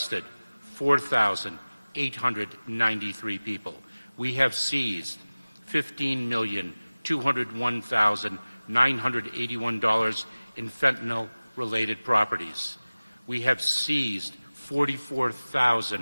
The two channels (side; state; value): both; inverted; correlation -0.99